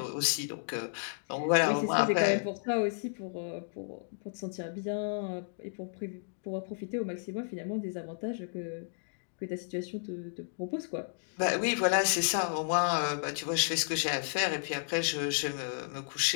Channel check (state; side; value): silent; right; digital silence